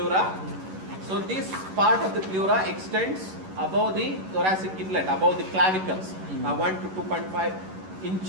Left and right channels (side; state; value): left; late; 11 ms